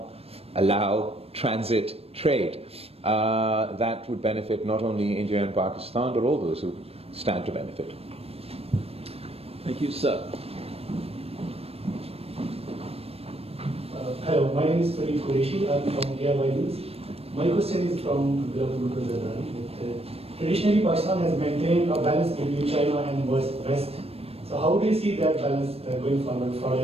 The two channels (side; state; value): left; late; 0.28 ms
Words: allow transit trade. That would benefit not only India and Pakistan, but all those who stand to benefit. Thank you, sir. Hello, my name is Farid Qureshi. I'm from IISS. My question is from Bilawal Bhutto Zardari. Traditionally, Pakistan has maintained a balance between China and West. So how do you see that balance going forward